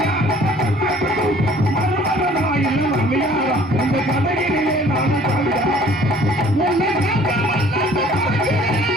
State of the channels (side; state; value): both; normal; correlation 0.54